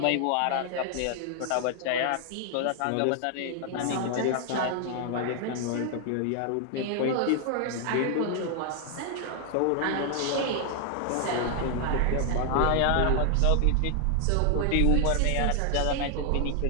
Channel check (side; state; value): both; different; correlation 0.00